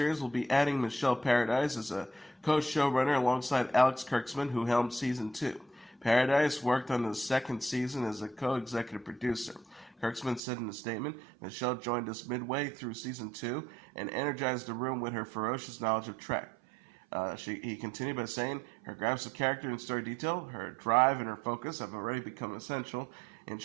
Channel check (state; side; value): drops out; left; at 10.4 s